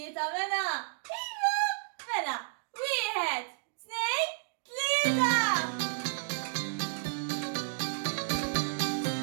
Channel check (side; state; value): left; silent; digital silence